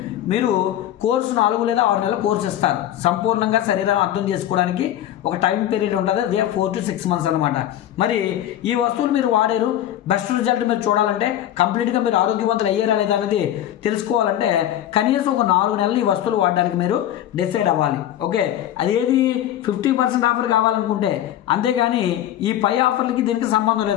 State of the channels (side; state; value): right; quieter; 12.0 dB